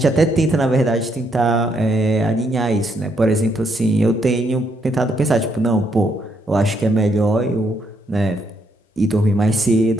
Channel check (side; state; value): both; normal; correlation 0.75